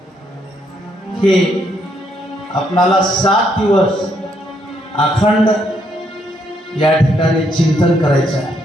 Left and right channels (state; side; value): normal; both; correlation 0.73